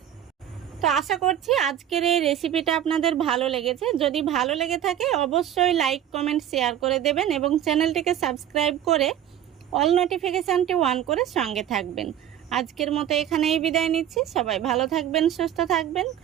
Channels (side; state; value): left; quieter; 10.7 dB